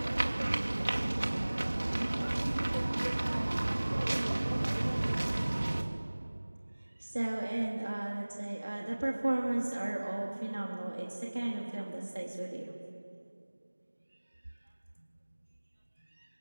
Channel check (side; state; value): both; inverted; correlation -1.00